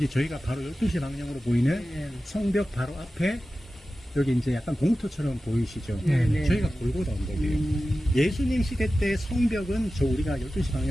저희가 바로 12시 방향으로 보이는 성벽 바로 앞에 여기 이제 약간 공터처럼 보이시죠? 저희가 골고다 언덕이에요. 예수님 시대 때 성벽은 저 우리가 12시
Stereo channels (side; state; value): both; normal; correlation 0.94